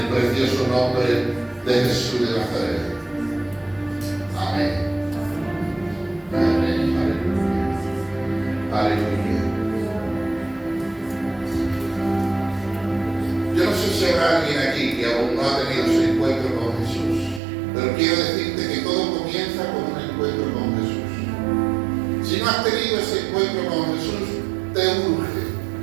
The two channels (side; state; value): left; drops out; at 17.4 s